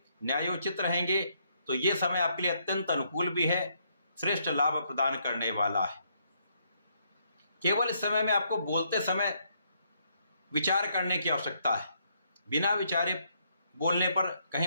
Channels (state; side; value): inverted; both; correlation -0.73